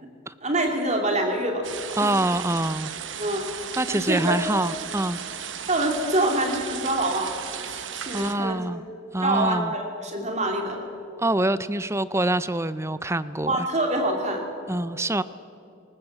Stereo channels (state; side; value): normal; both; correlation 0.32